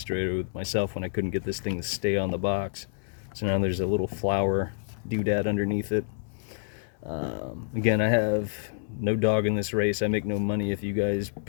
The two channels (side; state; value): right; silent; 59 dB below the other